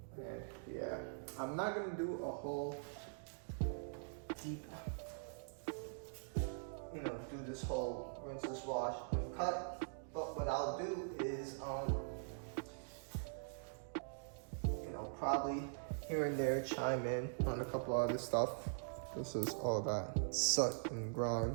And yeah, I'm not gonna do a whole deep, do this whole rinseless wash and cut. But what I'll do is, probably here and there chime in on a couple other stuff. This is all that soot and grime,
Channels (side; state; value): left; silent; digital silence